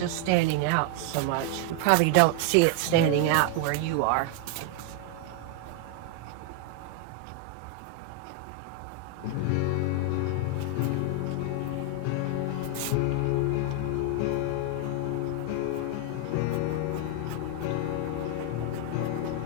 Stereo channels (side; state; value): both; different; correlation 0.00